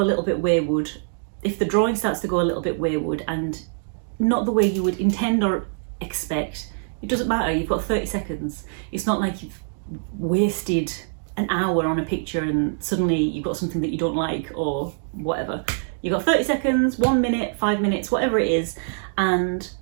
a little bit wayward, if the drawing starts to go a little bit wayward and not the way you would intend or expect, it doesn't matter, you've got 30 seconds. It's not like you've wasted an hour on a picture and suddenly you've got something that you don't like or whatever. You've got 30 seconds, 1 minute, 5 minutes, whatever it is, and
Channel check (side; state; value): left; silent; digital silence